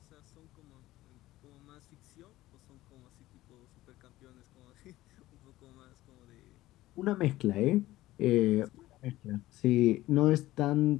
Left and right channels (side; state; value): right; quieter; 16.4 dB